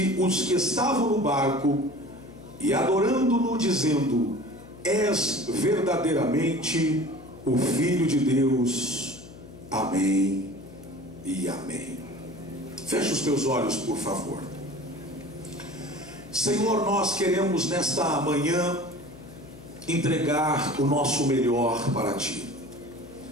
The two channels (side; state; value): left; noise; hum, 18 dB below the sound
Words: os que estavam no barco, e adorando-no, dizendo: és verdadeiramente o Filho de Deus. Amém e amém. Feche os teus olhos, por favor. Senhor, nós queremos nesta manhã entregar o nosso melhor para Ti.